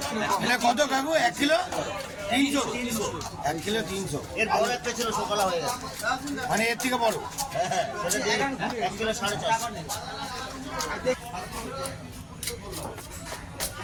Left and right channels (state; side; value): identical; both; correlation 1.00